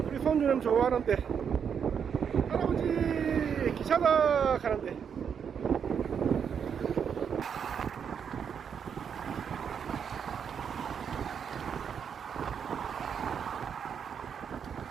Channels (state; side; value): quieter; left; 7.4 dB